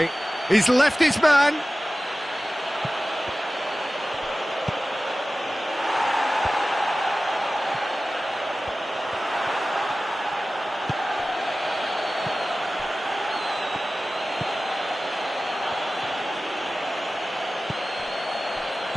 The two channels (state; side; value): normal; both; correlation 0.96